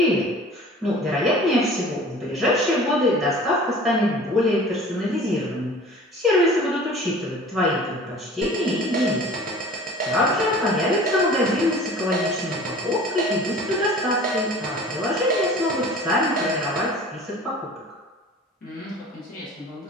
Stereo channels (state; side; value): normal; both; correlation 0.44